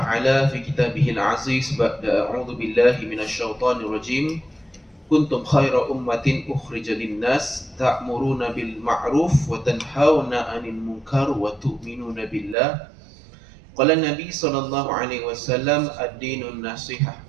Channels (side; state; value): left; drops out; at 12.6 s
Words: fi kitabihil aziz ba'da a'udzu billahi minasyaitonir rajim. Kuntum khaira ummatin ukhrijat lin-nas ta'muruna bil ma'ruf wa tanhauna 'anil munkar wa tu'minuna billah. Qala Nabi sallallahu alaihi wasallam ad-dinun nasihah.